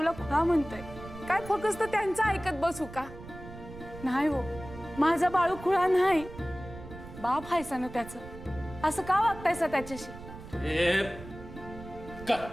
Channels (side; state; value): right; noise; rumble, 14 dB below the sound